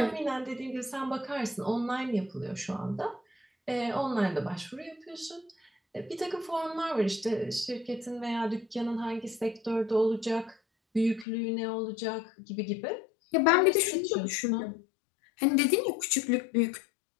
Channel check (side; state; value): right; drops out; at 11.2 s